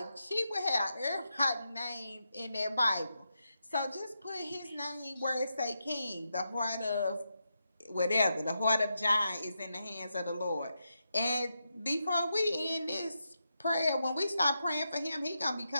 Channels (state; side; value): inverted; both; correlation -0.86